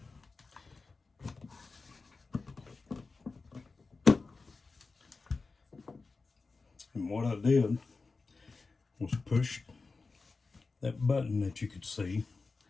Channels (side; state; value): right; quieter; 4.0 dB